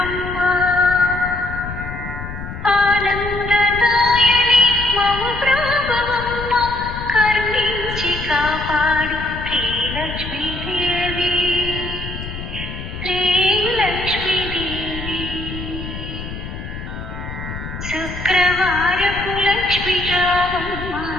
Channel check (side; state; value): left; noise; rumble, 9 dB below the sound